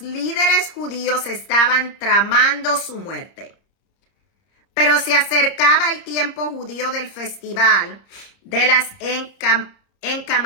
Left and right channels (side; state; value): right; late; 30 ms